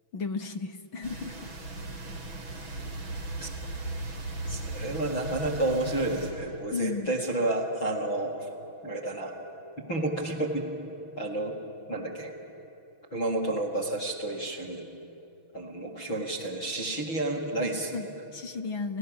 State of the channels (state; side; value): late; right; 6.1 ms